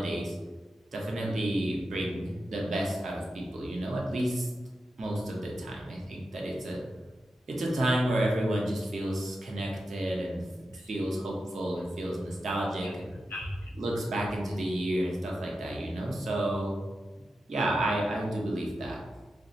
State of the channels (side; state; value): both; normal; correlation 0.90